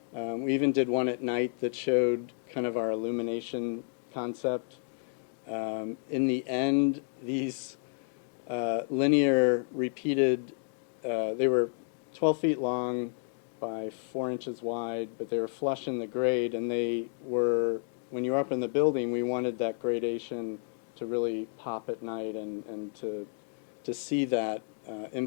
We even did one at night that showed kind of our illumination concept. In the end, these linear repeated, they were 12 feet long by 4 inches wide, but they were flush in the grade, and they were, when you were up in the building, we wanted that gradation to really pop at night and to see that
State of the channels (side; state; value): right; silent; digital silence